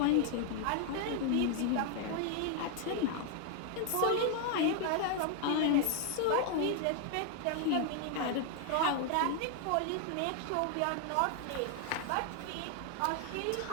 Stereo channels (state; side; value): different; both; correlation 0.00